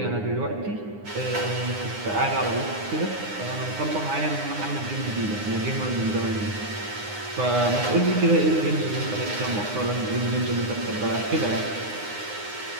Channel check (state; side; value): late; left; 9.7 ms